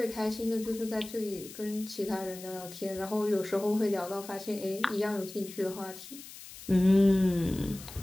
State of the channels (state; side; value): noise; left; hiss, 15 dB below the sound